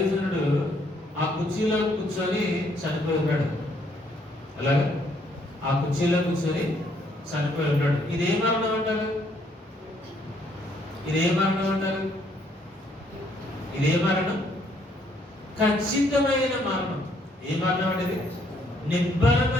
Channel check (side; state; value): both; normal; correlation 0.68